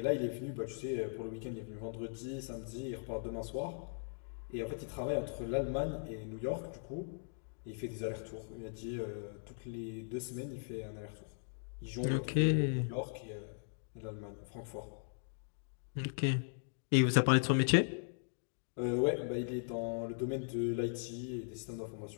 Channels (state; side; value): silent; right; digital silence